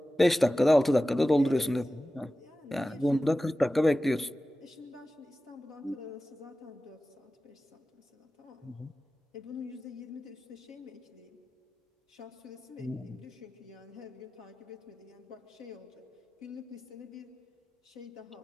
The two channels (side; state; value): both; normal; correlation 0.95